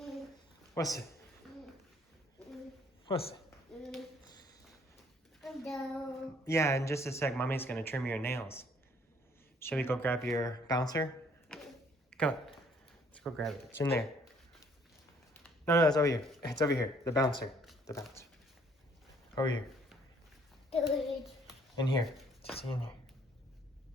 What's it? What's it? No. Yeah, in just a sec, mommy's gonna trim your nails. Shall we go grab your bouncer? Come on. Let's go grab it. It's in there. No, it's over here. It's over here. The bouncer. The bouncer. Over here. In here. Just in here.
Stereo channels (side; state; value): both; normal; correlation 0.62